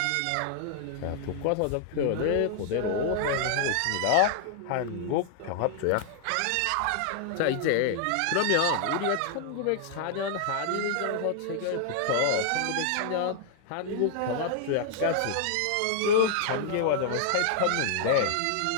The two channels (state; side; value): different; both; correlation -0.01